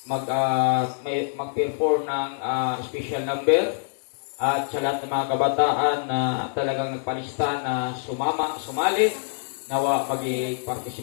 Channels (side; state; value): right; silent; digital silence